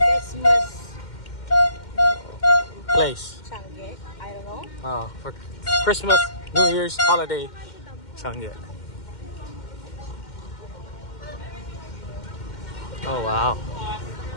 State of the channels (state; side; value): late; right; 2.1 ms